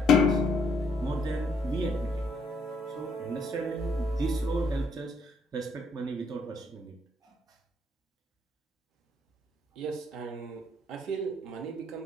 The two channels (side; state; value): both; normal; correlation 0.69